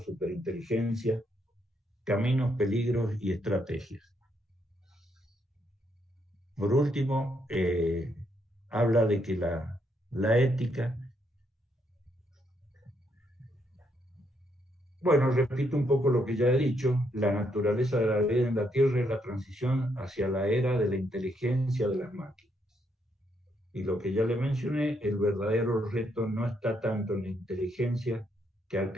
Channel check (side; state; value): both; normal; correlation 0.75